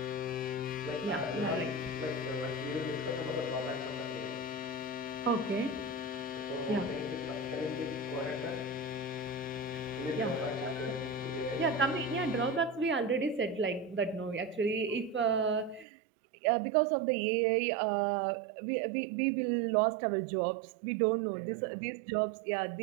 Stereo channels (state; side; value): drops out; left; at 15.9 s